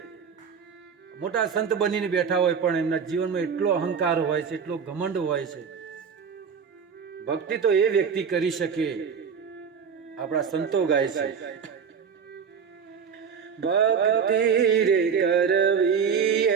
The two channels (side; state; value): left; quieter; 6.6 dB